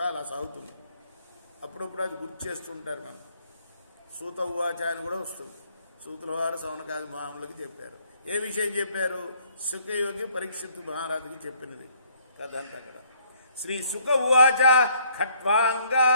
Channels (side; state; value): both; inverted; correlation -0.64